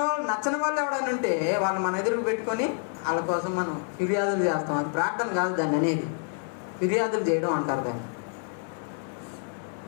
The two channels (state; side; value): silent; right; 56 dB below the other